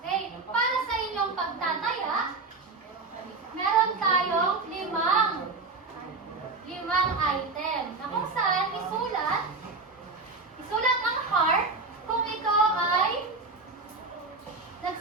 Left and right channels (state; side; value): quieter; left; 3.9 dB